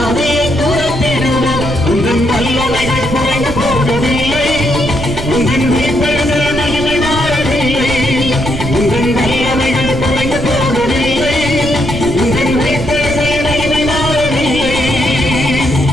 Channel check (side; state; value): right; noise; rumble, 8 dB below the sound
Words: துரத்திடுவோம். உங்கள் வல்லமைகள் குறைந்து போகவில்லை, உங்கள் உயிர்த்தெழுதல் மகிமை மாறவில்லை. உங்கள் வல்லமைகள் குறைந்து போகவில்லை, உங்கள் உயிர்த்தெழுதல் மகிமை மாறவில்லை.